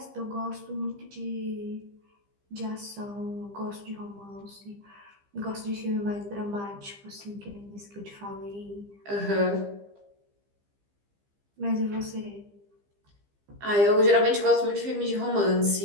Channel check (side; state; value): left; late; 15 ms